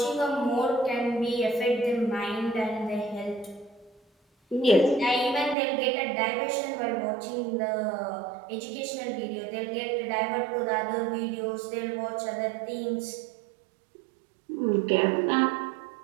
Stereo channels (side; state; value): left; drops out; at 5.6 s